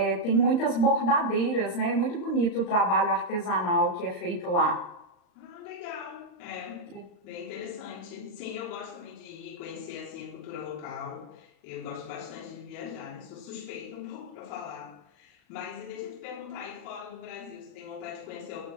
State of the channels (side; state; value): right; late; 35 ms